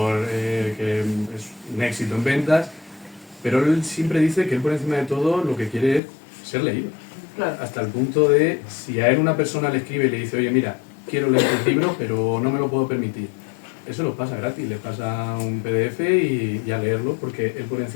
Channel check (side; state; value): right; drops out; at 6.0 s